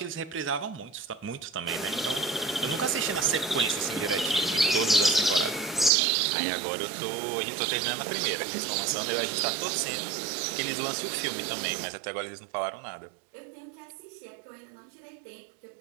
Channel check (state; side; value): drops out; left; at 5.9 s